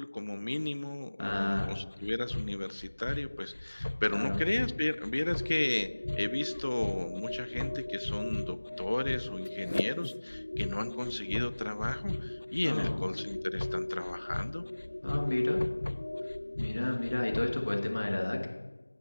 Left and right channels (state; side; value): inverted; both; correlation -1.00